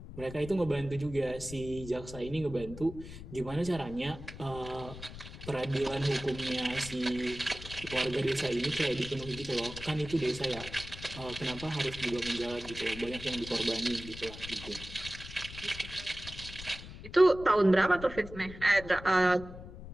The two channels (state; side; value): noise; left; rumble, 13 dB below the sound